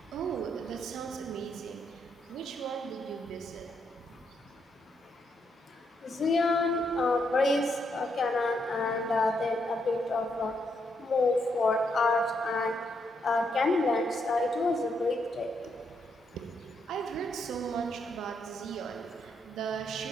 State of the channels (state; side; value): normal; both; correlation 0.77